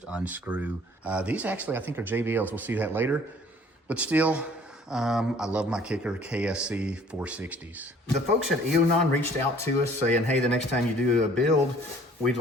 unscrew. These actually, I think, are JBLs. We'll see that later. But still, I love my Kicker KSC460s. The folks at Eonon reached out to us saying, hey, the next time you do a build, we'd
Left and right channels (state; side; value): normal; both; correlation 0.55